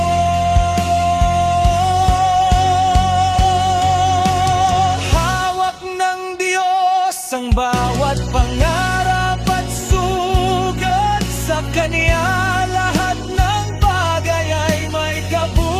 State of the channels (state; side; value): identical; both; correlation 1.00